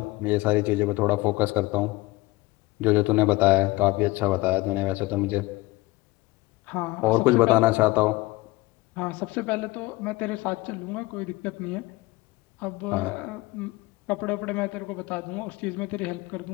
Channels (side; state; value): right; quieter; 21.1 dB